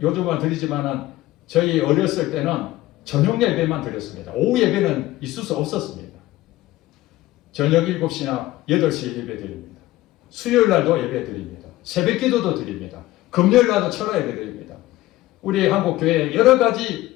요즘은 드리지만은 저희 어렸을 때는 저녁 예배만 드렸습니다. 오후 예배는 있을 수 없었습니다. 저녁 7시나 8시에 예배 드립니다. 수요일 날도 예배 드립니다. 새벽 기도도 드립니다. 금요일 날도 철야 예배 드립니다. 우리 한국 교회에 여러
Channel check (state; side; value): quieter; right; 16.7 dB